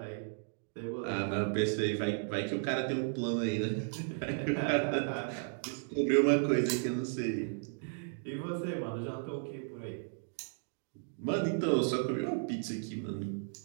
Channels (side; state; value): left; silent; digital silence